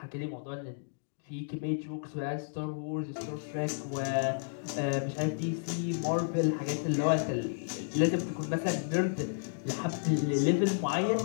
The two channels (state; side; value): silent; right; digital silence